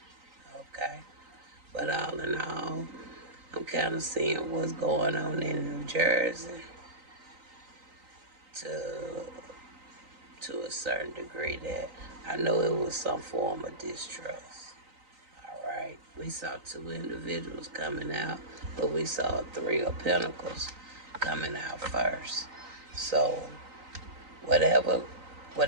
Okay. But all in all, I'm kind of seeing what's going on in New Jersey to a certain degree, that I know it was some form of distrust. All right. We saw 2 individuals coming out, but we saw 3 of Pentacles coming out first. So whatever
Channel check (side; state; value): left; late; 3.9 ms